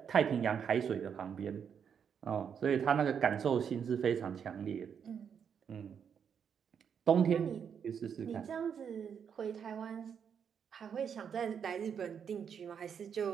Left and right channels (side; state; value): left; quieter; 7.5 dB